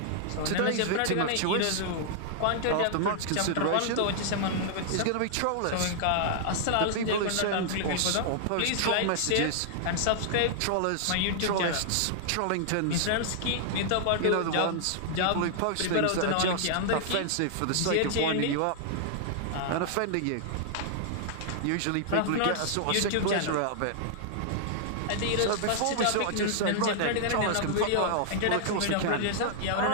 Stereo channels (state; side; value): different; both; correlation -0.01